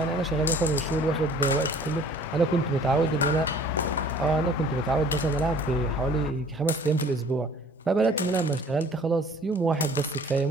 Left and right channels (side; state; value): both; normal; correlation 0.51